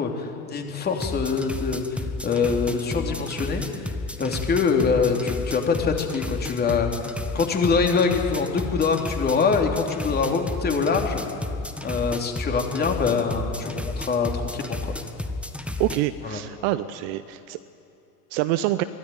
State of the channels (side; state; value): right; quieter; 3.1 dB